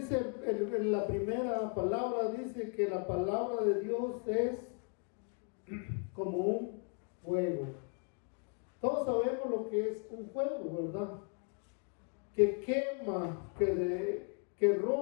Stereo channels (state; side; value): quieter; right; 39.5 dB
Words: en la primera palabra dice que la palabra de Dios es como un fuego. Todos sabemos lo que es un fuego, ¿verdad? Que quema, que